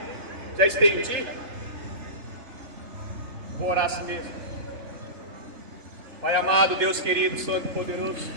já estendi, vou orar assim mesmo. Pai amado, Deus querido, Santo e poderoso,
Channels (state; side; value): late; left; 3.3 ms